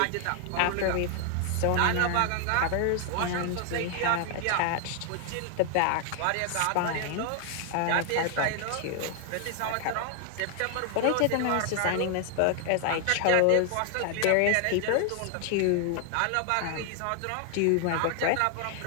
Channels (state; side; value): different; both; correlation 0.00